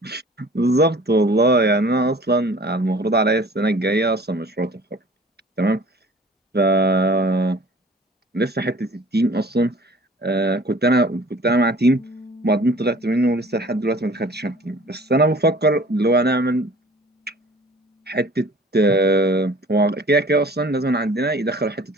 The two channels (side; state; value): both; normal; correlation 0.48